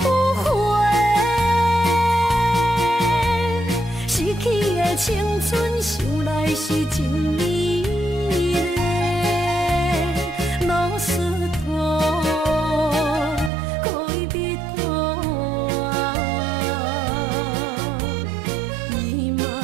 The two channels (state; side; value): drops out; left; at 13.5 s